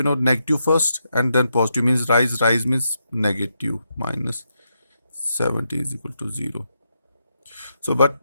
negative first and then positive means rise means negative, minus 70 is equal to 0. So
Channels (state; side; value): inverted; both; correlation -0.82